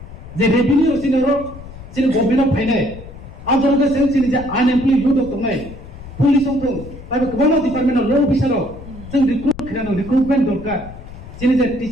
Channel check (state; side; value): noise; left; rumble, 15 dB below the sound